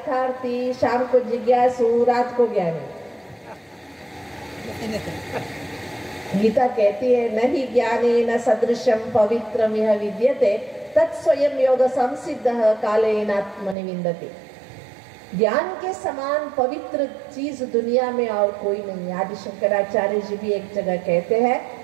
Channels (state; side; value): drops out; left; at 13.8 s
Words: शाम को जिज्ञासु, रात को ज्ञानी? गीता कहती है नहीं ज्ञाने न सदृशम पवित्रम यह विद्यते तत्स्वयं योग संसिद्धः कालेन आत्मनि विन्दति। ज्ञान के समान पवित्र चीज दुनिया में और कोई नहीं। आदि शंकराचार्य जी भी एक जगह कहते हैं